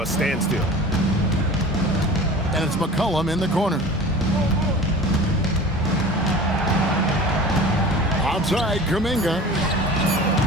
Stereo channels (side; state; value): both; normal; correlation 0.39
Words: a standstill. And it's McCollum in the corner. Outside, Kuminga.